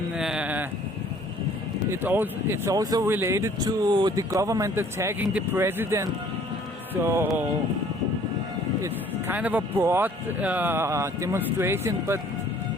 it's also related to the government attacking the president. So it's kind of a broad demonstration, but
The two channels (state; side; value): normal; both; correlation 0.56